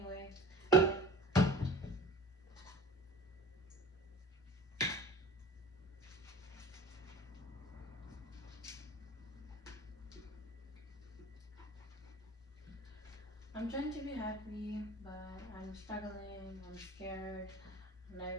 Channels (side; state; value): both; normal; correlation 0.41